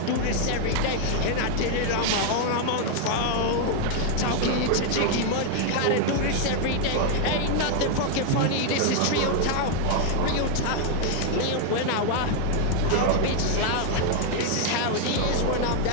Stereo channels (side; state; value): both; different; correlation 0.00